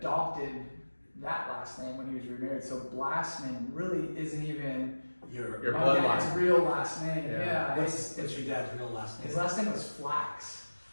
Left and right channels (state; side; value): inverted; both; correlation -1.00